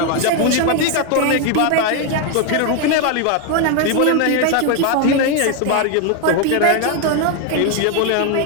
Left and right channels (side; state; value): both; different; correlation 0.01